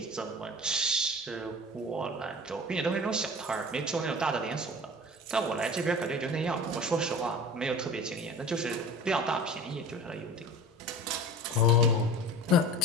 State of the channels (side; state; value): both; normal; correlation 0.38